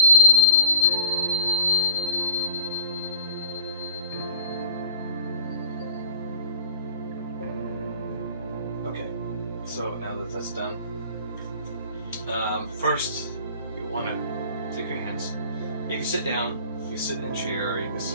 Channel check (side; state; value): both; inverted; correlation -0.43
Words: Okay, so now that that's done, first you want to take your hands. You can sit down, you can sit in a chair, or you can